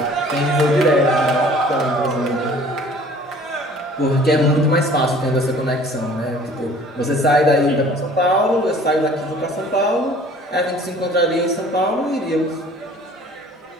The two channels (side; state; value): both; normal; correlation 0.51